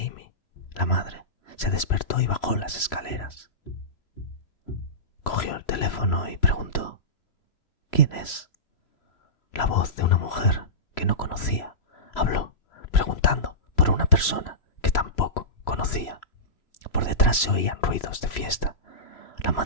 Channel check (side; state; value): right; late; 3.0 ms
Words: la madre, se despertó y bajó las escaleras. Cogió el teléfono y preguntó: ¿quién es? La voz de una mujer que no conocía habló, preguntando por una persona que tampoco conocía. Por detrás se oían ruidos de fiesta. La